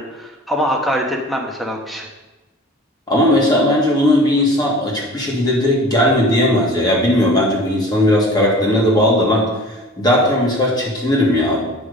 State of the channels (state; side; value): normal; both; correlation 0.43